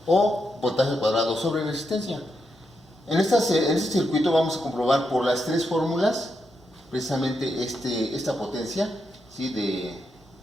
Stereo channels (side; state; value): both; normal; correlation 0.83